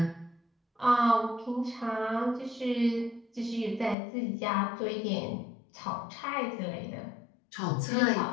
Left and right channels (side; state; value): right; drops out; at 4.0 s